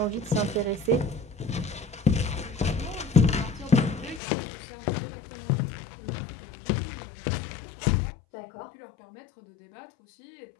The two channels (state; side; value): drops out; right; at 4.2 s